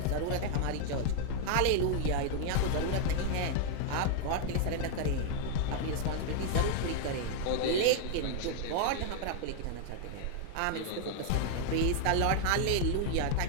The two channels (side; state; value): both; different; correlation 0.00